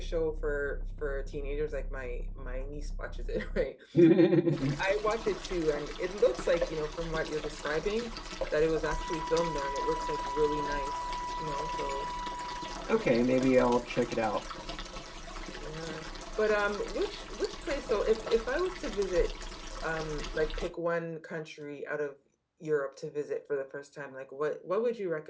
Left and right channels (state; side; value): identical; both; correlation 1.00